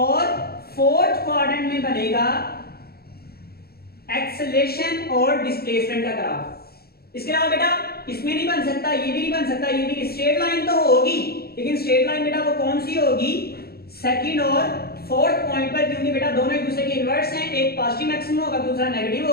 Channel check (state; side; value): late; right; 0.45 ms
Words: फोर्थ क्वाड्रेंट में बनेगा एक्सेलरेशन और डिस्प्लेसमेंट का ग्राफ। इसके अलावा बेटा इसमें नहीं बन सकता, ये भी नहीं बन सकता, ये भी। स्ट्रेट लाइन तो होगी लेकिन स्ट्रेट लाइन बेटा वो कौन सी होगी, सेकंड और फोर्थ पॉइंट पर, क्योंकि बेटा दोनों एक दूसरे के इनवर्स हैं, एक पॉजिटिव मैक्सिमम होगा दूसरा नेगेटिव